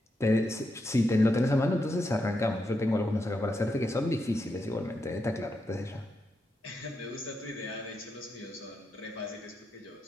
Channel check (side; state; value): both; normal; correlation 0.84